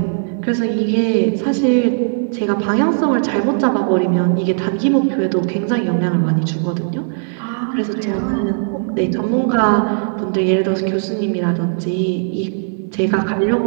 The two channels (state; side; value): silent; left; digital silence